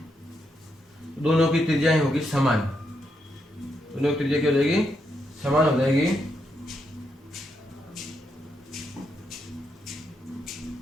दोनों की त्रिज्याएं होगी समान, दोनों की त्रिज्या क्या हो जाएगी, समान हो जाएगी।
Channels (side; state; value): both; normal; correlation 0.80